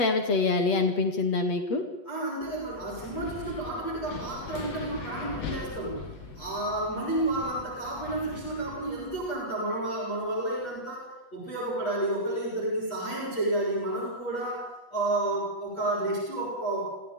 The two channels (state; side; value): late; right; 8.2 ms